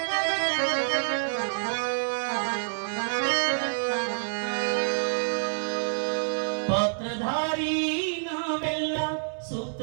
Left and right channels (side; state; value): left; silent; 58 dB below the other